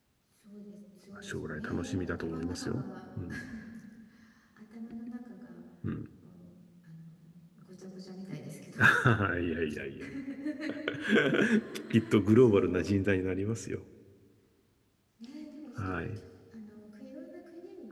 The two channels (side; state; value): both; identical; correlation 1.00